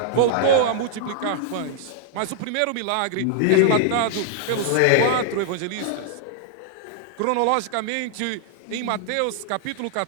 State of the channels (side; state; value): both; different; correlation 0.00